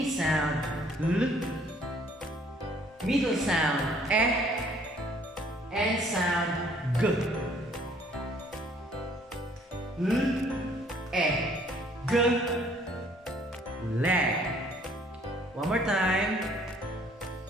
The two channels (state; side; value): normal; both; correlation 0.60